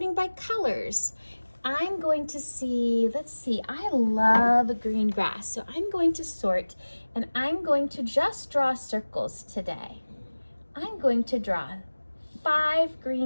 by colors. I'm going to see, let's see, I love green grass. So I'm going to sort, and I'm going to just draw circles today. I'm going to draw 5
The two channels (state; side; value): inverted; both; correlation -1.00